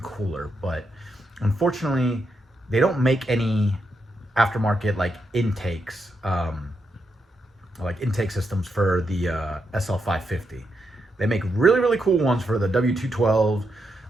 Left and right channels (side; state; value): both; normal; correlation 0.82